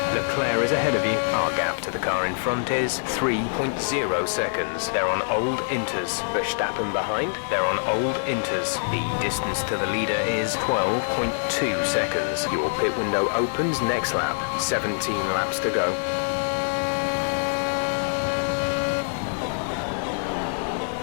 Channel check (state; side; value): silent; right; digital silence